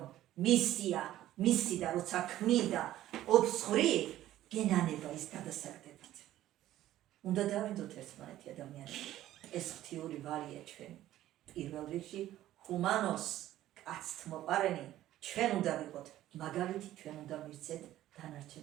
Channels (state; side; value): quieter; left; 13.7 dB